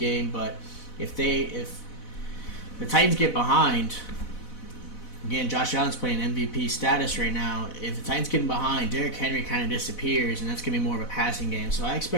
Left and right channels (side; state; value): right; late; 4.1 ms